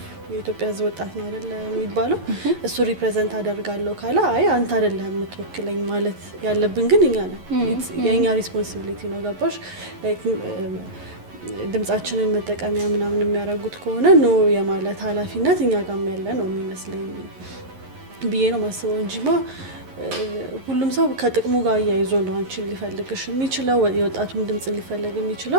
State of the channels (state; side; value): late; left; 11 ms